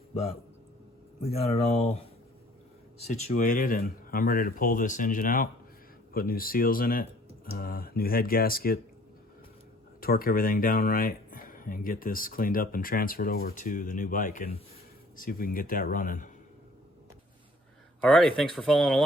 but we got it all situated and I'm ready to pull this engine out, put new seals in it, new head gasket, torque everything down right, and get this cleaned up and transferred over to the new bike and see if we can get that running. Alrighty, thanks for following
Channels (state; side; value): normal; both; correlation 0.54